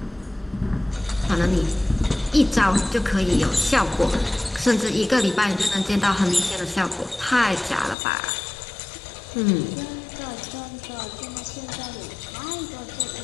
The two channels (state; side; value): drops out; right; at 8.0 s